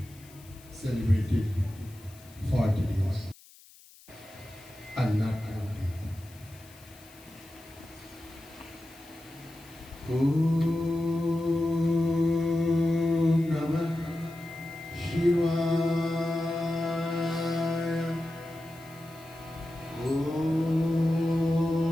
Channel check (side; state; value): left; noise; hiss, 24 dB below the sound